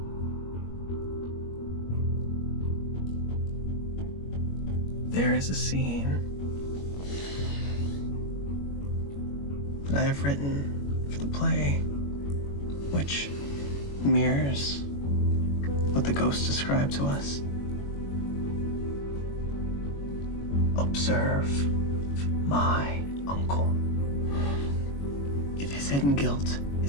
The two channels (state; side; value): late; right; 21 ms